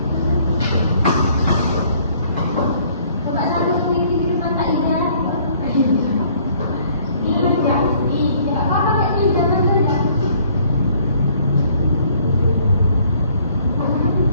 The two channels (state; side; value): inverted; both; correlation -0.60